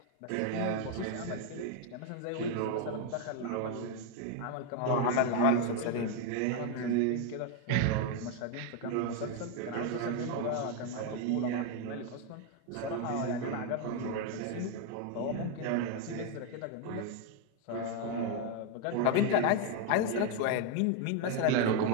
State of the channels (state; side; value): different; both; correlation 0.01